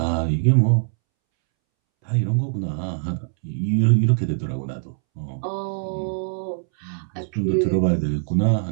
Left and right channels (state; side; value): silent; left; 64 dB below the other